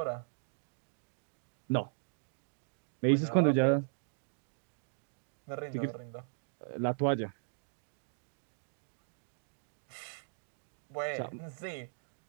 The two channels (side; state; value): left; silent; digital silence